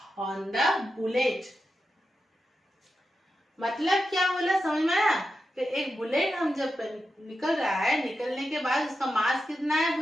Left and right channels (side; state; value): both; normal; correlation 0.90